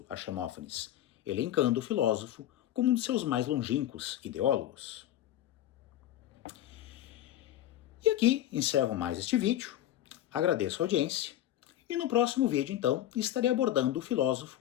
a Xenófanes, elencando o filósofo como um de seus mais longínquos ideólogos. E aqui encerro mais este vídeo, agradeço a audiência, e no próximo vídeo, então, estarei abordando o filósofo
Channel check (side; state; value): right; quieter; 12.6 dB